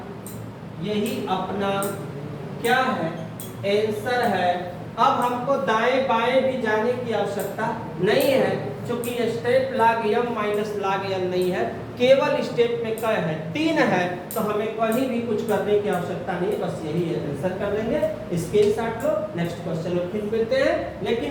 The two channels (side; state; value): both; identical; correlation 1.00